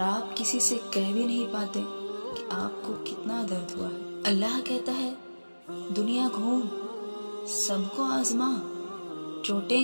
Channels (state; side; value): inverted; both; correlation -1.00